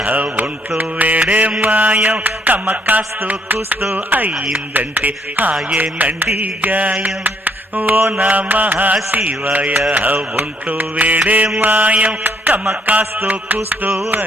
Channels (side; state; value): both; normal; correlation 0.68